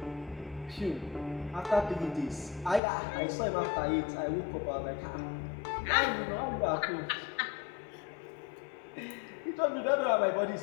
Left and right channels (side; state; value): right; drops out; at 2.8 s